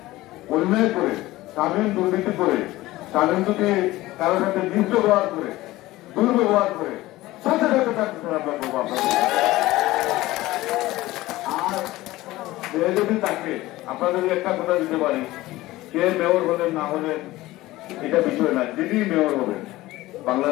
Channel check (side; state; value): right; quieter; 17.8 dB